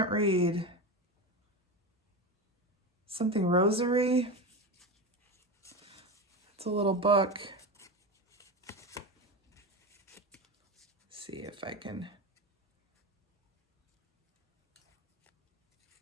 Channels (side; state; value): both; normal; correlation 0.21